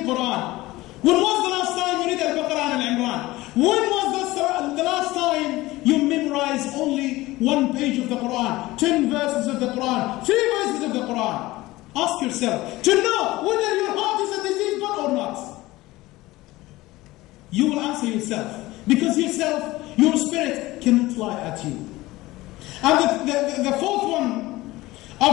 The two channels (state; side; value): quieter; right; 18.8 dB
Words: Quran? When was the last time you read Al-Baqarah and Al-Imran? When was the last time you memorized only one page of the Quran, 10 verses of the Quran, 3 verses of the Quran? Ask yourself to know whether your heart is a diseased one or not. You will answer yourself, because yourself, your spirit cannot lie at you. And the fourth one